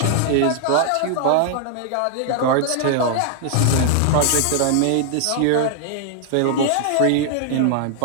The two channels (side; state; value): both; different; correlation 0.00